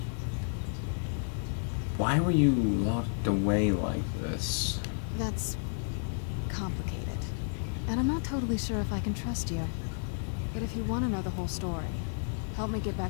Why were you locked away like this? That's complicated. And I'm not totally sure if I can trust you. But if you want to know the whole story, help me get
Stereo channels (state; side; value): silent; right; digital silence